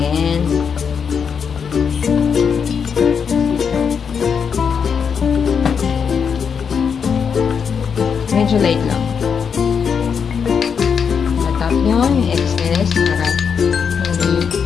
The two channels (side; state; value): right; quieter; 6.6 dB